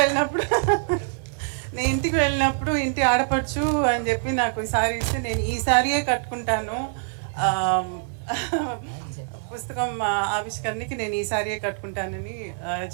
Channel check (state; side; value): silent; left; 62 dB below the other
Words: ఇంటికి వెళ్ళినప్పుడు ఇంటి ఆడపడుచు అని చెప్పి నాకు ఈసారి ఇస్తే నేను ఈ సారీయే కట్టుకుంటాను, పుస్తకం ఆవిష్కరణకి నేను ఈ సారీయే కట్టుకుంటానని